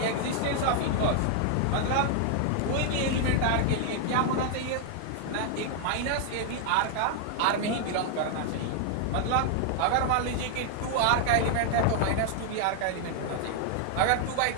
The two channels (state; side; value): different; both; correlation 0.00